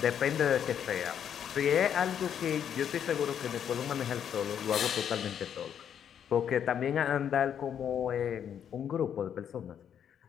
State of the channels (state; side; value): quieter; right; 8.8 dB